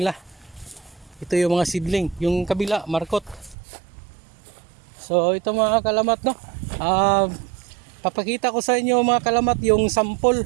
Ito yung mga seedling, yung kabila markot. So ito mga kalamat, no. Papakita ko sa inyo mga kalamat yung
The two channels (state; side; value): drops out; left; at 3.6 s